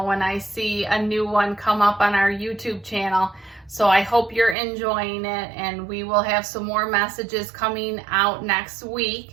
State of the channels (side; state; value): left; drops out; at 4.5 s